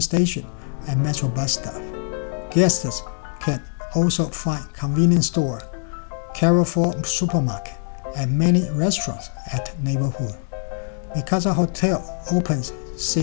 and metro bus stop. Guests can also find convenience store, Carrefour Supermarket, and many restaurants at neighborhood. Mi Casa Hotel opens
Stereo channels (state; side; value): silent; right; digital silence